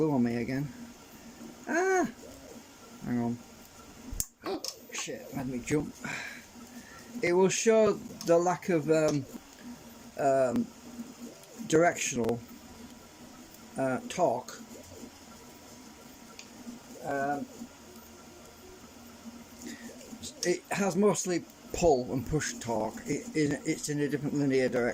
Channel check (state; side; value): identical; both; correlation 1.00